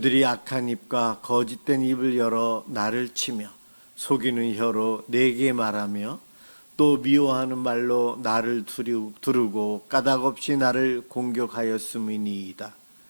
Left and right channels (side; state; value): both; inverted; correlation -1.00